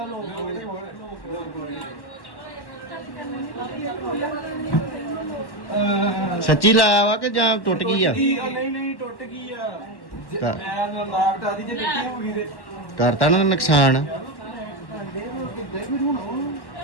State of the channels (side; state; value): right; late; 1.1 ms